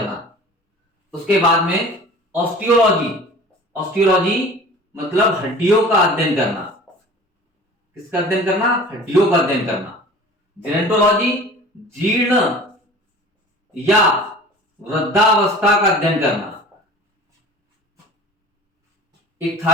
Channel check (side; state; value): both; normal; correlation 0.42